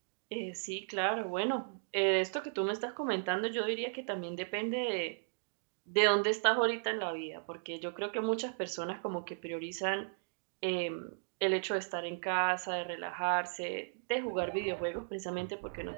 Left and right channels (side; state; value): left; silent; digital silence